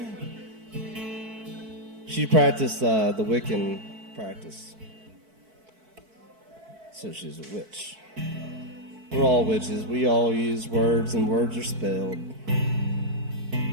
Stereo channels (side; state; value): left; late; 4.6 ms